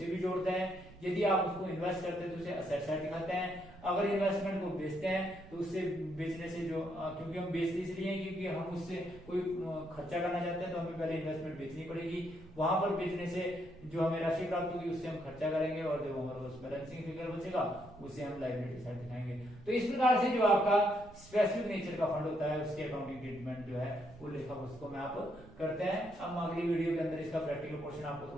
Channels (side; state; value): right; noise; rumble, 20 dB below the sound